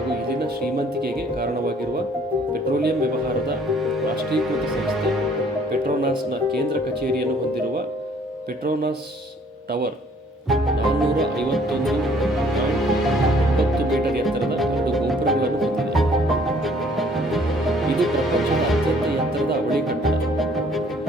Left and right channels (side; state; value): both; normal; correlation 0.59